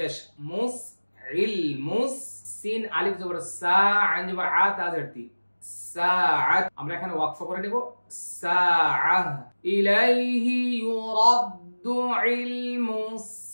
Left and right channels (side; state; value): both; inverted; correlation -1.00